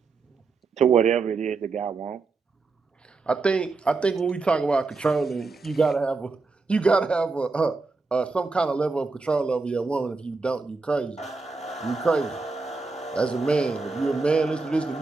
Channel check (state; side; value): quieter; left; 4.0 dB